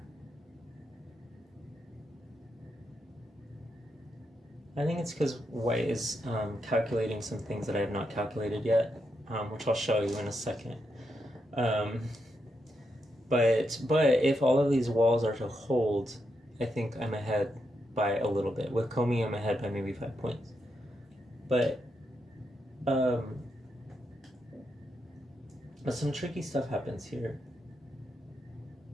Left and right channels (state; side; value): normal; both; correlation 0.83